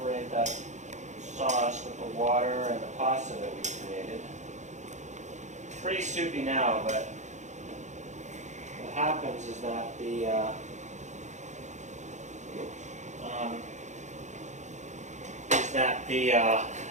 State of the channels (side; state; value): left; late; 0.34 ms